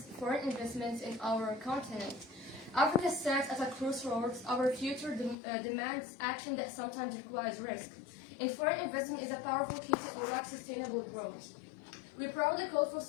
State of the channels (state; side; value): drops out; right; at 5.4 s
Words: foreign investments in our continent. Africa stands at a crossroads. Our future demands action that sometimes requires risk. And foreign investment is a powerful key to unlock sustainable growth. We proudly call for